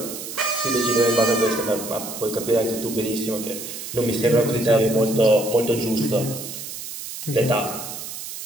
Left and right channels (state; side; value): noise; right; hiss, 9 dB below the sound